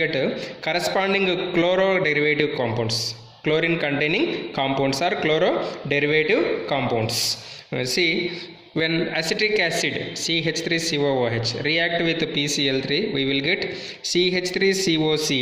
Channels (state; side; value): identical; both; correlation 1.00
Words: corresponding chloro-derivative compounds. Chlorine containing compounds are chloro-derivative compounds. See, when acetic acid CH3COOH react with PCl3, we will get